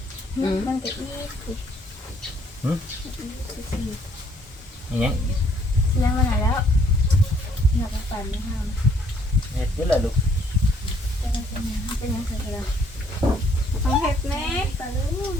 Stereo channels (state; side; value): normal; both; correlation 0.65